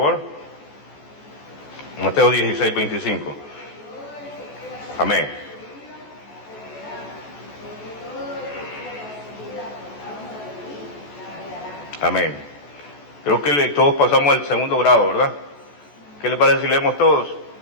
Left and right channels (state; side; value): late; right; 14 ms